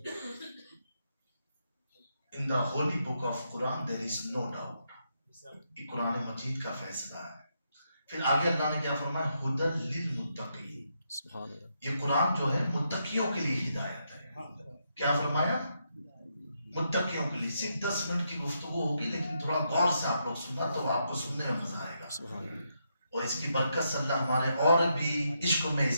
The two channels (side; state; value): both; inverted; correlation -0.80